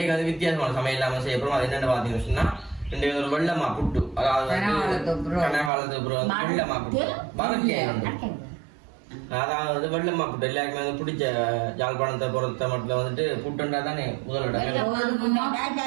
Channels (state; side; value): drops out; left; at 5.7 s